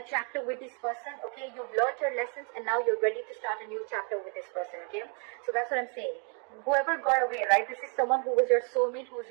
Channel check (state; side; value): quieter; left; 38.3 dB